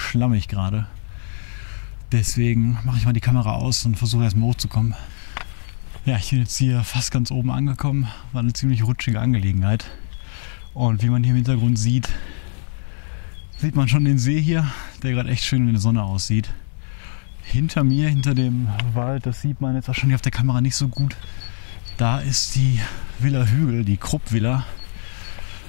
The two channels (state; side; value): silent; right; digital silence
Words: gerade. Deswegen mache ich mal die Kamera aus und versuche erstmal hochzukommen. Ja, ich bin jetzt hier fast ganz oben angekommen. War eine ziemlich rutschige Angelegenheit. Und wie man hier im Hintergrund sieht, sieht man schon den See hier, der gerade echt schön in der Sonne aussieht. Hinter mir, hinter dem Wald, das sieht man jetzt wahrscheinlich auf der Kamera nicht so gut. Da ist die Villa Hügel, die Krupp-Villa.